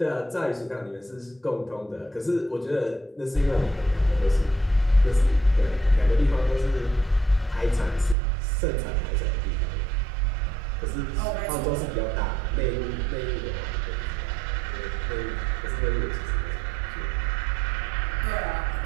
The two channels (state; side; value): drops out; left; at 8.2 s